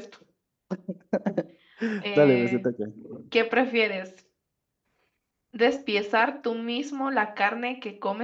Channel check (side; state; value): both; identical; correlation 1.00